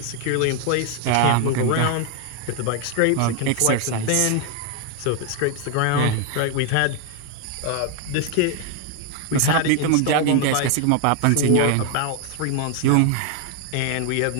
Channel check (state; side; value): different; both; correlation 0.01